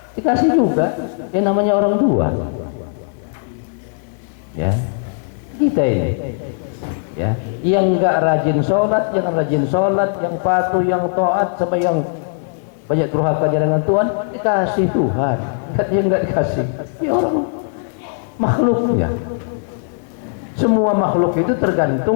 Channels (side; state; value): right; silent; 67 dB below the other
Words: Dikasih juga, yang namanya orang tua. Ya, kita ini, ya, yang nggak rajin sholat, yang rajin sholat, yang patuh, yang taat, sama yang banyak durhakanya dengan Tuhan, dikasih Tuhan. Yang nggak dikasih, ya orang makhluknya. Semua makhluk itu